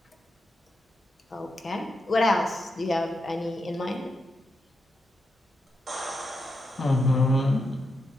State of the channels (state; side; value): normal; both; correlation 0.84